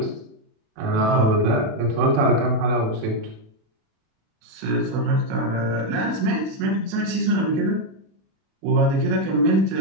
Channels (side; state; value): left; late; 36 ms